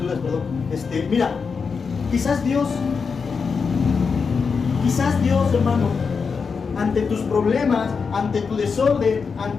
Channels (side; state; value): right; quieter; 5.4 dB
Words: perdón. Mira, quizás Dios, hermano, ante tus problemas, ante tu desorden,